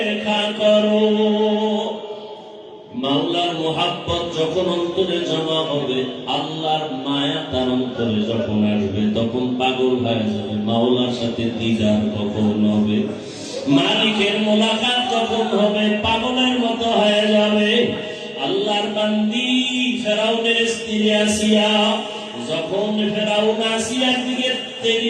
करो। মাওলার মোহাব্বত যখন অন্তরে জমা হবে, আল্লাহর মায়া তার অন্তরে যখন আসবে, তখন পাগল হয়ে যাবে। মাওলার সাথে দিদার কখন হবে, মালিকের মোলাকাত যখন হবে, পাগলের মতো হয়ে যাবে। আল্লাহর বান্দি ফেরাউনের স্ত্রী আসিয়া, যখন ফেরাউন আসিয়ার দিকে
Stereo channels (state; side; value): identical; both; correlation 1.00